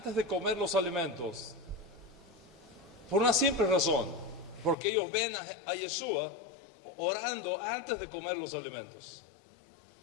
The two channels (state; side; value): drops out; right; at 4.8 s